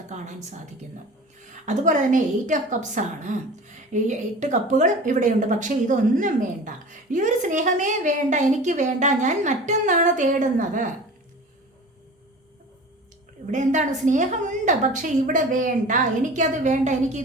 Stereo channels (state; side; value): normal; both; correlation 0.38